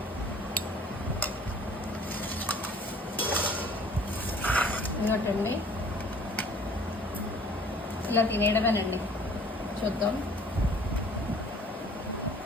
ఇంకోటండి, ఇలా తినేయడమేనండి. చూద్దాం.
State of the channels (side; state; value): both; normal; correlation 0.52